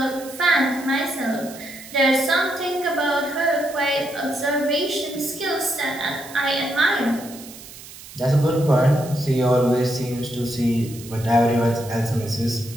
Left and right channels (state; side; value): noise; right; hiss, 16 dB below the sound